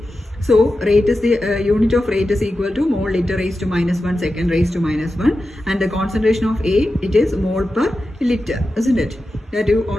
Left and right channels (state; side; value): normal; both; correlation 0.92